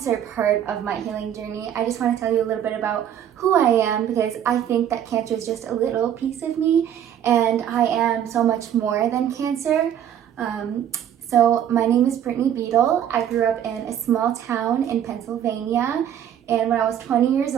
part of my healing journey, I just want to tell you a little bit about who I am, because I think that cancer is just a little piece of me, and I am so much more than cancer. So my name is Brittney Beadle. I grew up in a small town in Pennsylvania, and when I was 20 years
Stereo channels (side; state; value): left; quieter; 9.9 dB